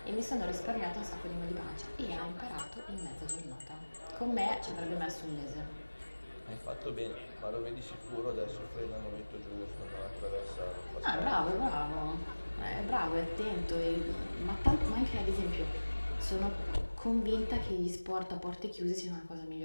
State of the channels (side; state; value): both; inverted; correlation -1.00